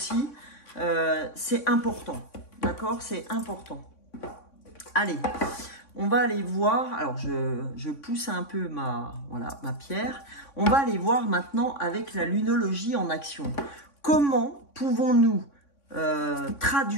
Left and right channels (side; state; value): right; late; 3.6 ms